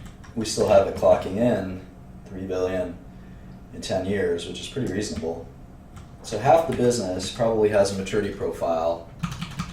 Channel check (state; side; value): identical; both; correlation 1.00